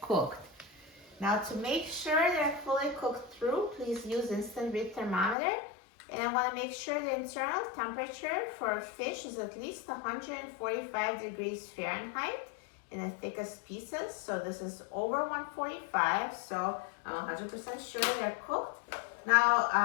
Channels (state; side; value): drops out; right; at 5.4 s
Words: cooked. Now to make sure they're fully cooked through, please use instant read thermometer. And I want to make sure the internal temperature for fish is at least 145 degrees Fahrenheit in the thickest pieces. So this is over 145, so I'm 100% sure they're cooked. Now,